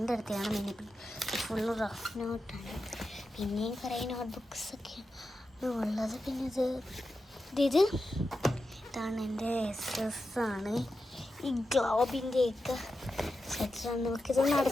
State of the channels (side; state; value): both; normal; correlation 0.90